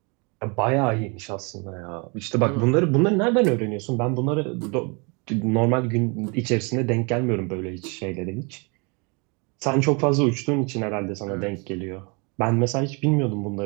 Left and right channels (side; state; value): left; quieter; 31.5 dB